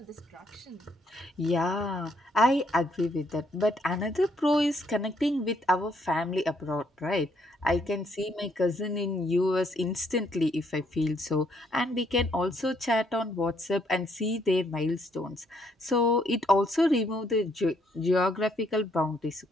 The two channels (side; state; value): both; normal; correlation 0.71